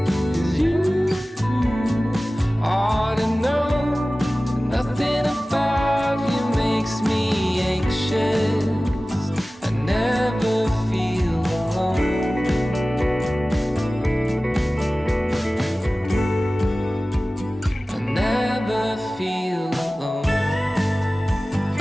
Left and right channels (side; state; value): both; normal; correlation 0.97